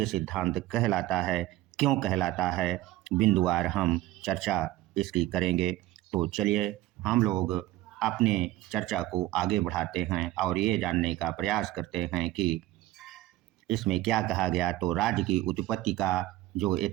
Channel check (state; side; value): quieter; left; 15.9 dB